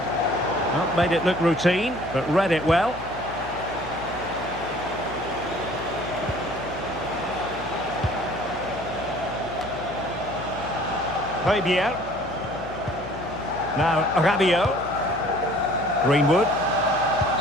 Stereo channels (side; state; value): left; noise; hum, 15 dB below the sound